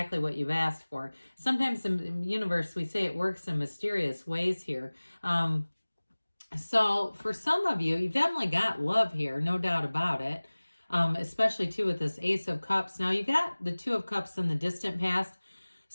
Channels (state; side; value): inverted; both; correlation -1.00